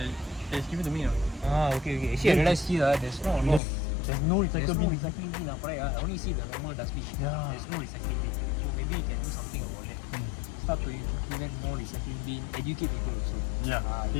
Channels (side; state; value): right; drops out; at 3.6 s